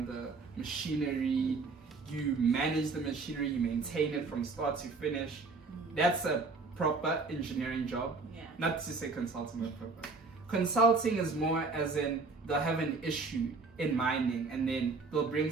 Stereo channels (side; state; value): left; quieter; 4.1 dB